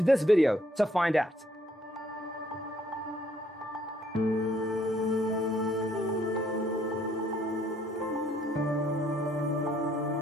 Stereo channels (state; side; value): normal; both; correlation 0.67